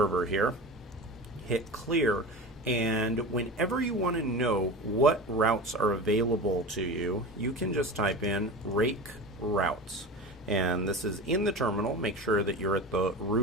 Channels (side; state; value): both; normal; correlation 0.30